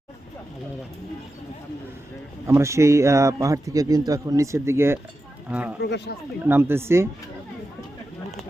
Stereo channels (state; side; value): normal; both; correlation 0.90